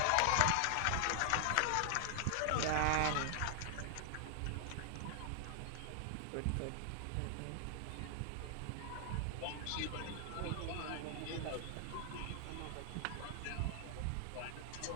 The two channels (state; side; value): different; both; correlation 0.00